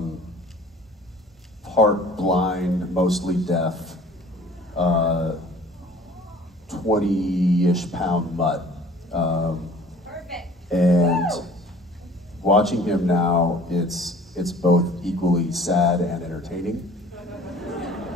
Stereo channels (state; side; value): normal; both; correlation 0.50